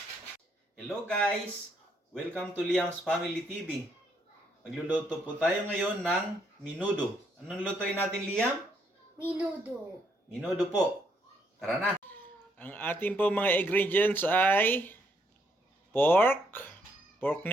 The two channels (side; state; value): both; normal; correlation 0.72